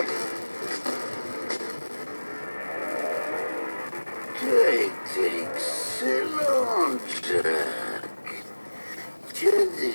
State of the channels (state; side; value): inverted; both; correlation -1.00